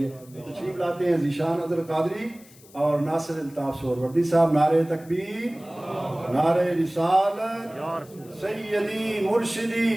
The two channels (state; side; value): noise; left; hiss, 24 dB below the sound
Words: है। तो तशरीफ लाते हैं ज़ीशान अज़हर कादरी और नासिर अल्ताफ़ सोहरवर्दी साहब। नारे तकबीर, नारे रिसालत, सैयदी मुर्शिदी